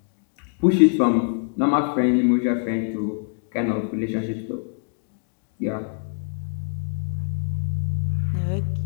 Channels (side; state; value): right; silent; 56 dB below the other